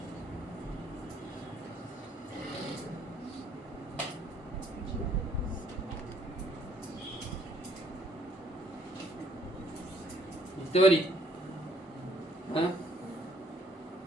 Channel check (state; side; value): normal; both; correlation 0.64